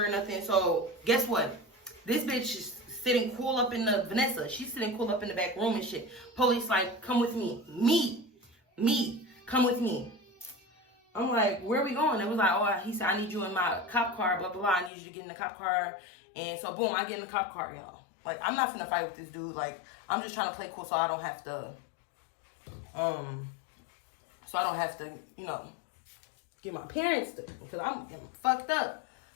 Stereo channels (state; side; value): drops out; right; at 14.9 s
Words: or nothing. So guess what? This bitch is sitting cool up in the Vanessa. She's sitting cool up in the back room and shit. Police like, come with me. Me. Come with me. I'm like, where are we going? It was like, oh, he said, I need you in my cop car, blah, blah, blah. I need you to get in the cop car. And so, boom, I get in the cop car, y'all. Like, I'm not finna fight with this dude. Like, I'm just trying to play cool so I don't have to, you know, get my parents to, because I'm fucked up.